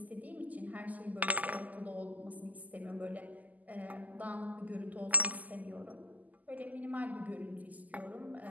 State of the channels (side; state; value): left; late; 0.079 ms